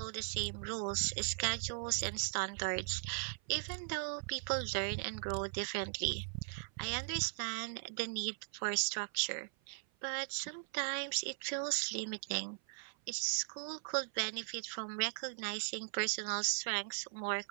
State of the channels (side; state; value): left; silent; 52 dB below the other